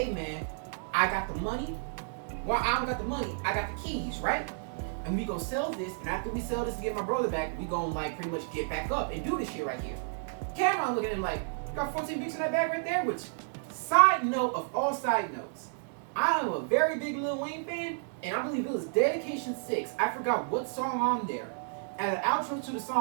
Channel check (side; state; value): left; silent; digital silence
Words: man, I got the money. Well, I don't got the money, I got the keys, right? And we gonna sell this, and after we sell this to get my brother back, we gonna like pretty much get back up and do this shit right here. Cameron looking at him like, you got 14 bricks in that bag right there? Which, side note of all side notes, I am a very big Lil Wayne fan, and I believe it was Dedication 6. I forgot what song on there. At the outro to the